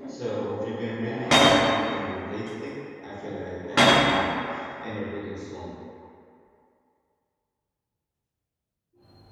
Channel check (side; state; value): both; identical; correlation 1.00